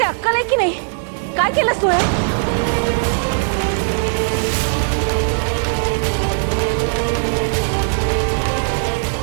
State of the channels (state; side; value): silent; left; digital silence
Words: अक्कल आहे की नाही? काय केलंस तू?